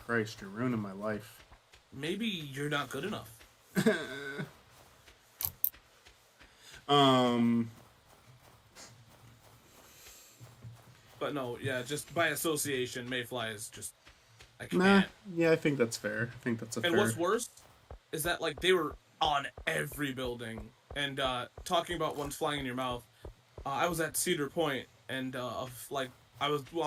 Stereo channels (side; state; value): both; identical; correlation 1.00